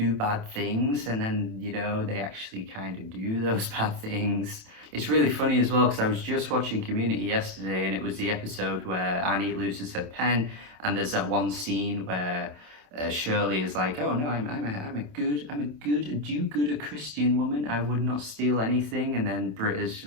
bad things, and then, you know, they actually kind of do those bad things. It's really funny as well, because I was just watching Community yesterday, and it was the episode where Annie loses her pen, and there's that one scene where Shirley is like, "Oh no, I'm a do-gooder Christian woman. I would not steal anything." And then Britt is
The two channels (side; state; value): left; late; 27 ms